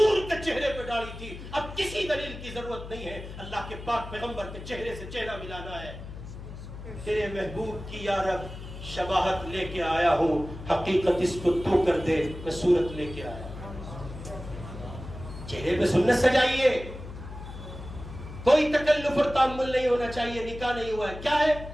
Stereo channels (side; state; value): left; noise; hum, 12 dB below the sound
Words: کے چہرے پہ داڑھی تھی، اب کسی دلیل کی ضرورت نہیں ہے۔ اللہ کے پاک پیغمبر کے چہرے سے چہرہ ملانا ہے۔ تیرے محبوب کی یا رب شباہت لے کے آیا ہوں، حقیقت اس کو تو کر دے، میں صورت لے کے آیا ہوں۔ چہرے پہ سنت سجائیے، کوئی تکلف اور تعامل نہیں ہونا چاہیے۔ نکاح نہیں ہوا ہے، کیا ہے؟